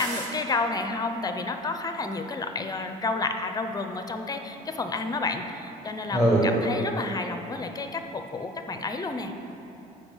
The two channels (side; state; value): both; normal; correlation 0.39